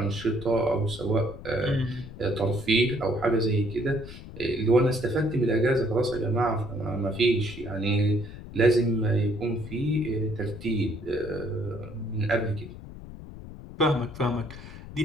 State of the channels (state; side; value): noise; left; rumble, 13 dB below the sound